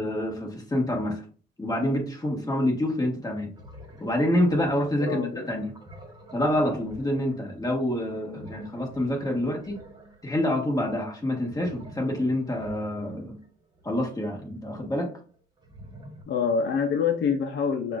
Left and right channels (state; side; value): normal; both; correlation 0.67